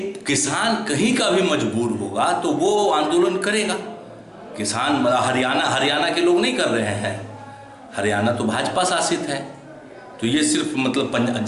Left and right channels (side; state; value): both; identical; correlation 1.00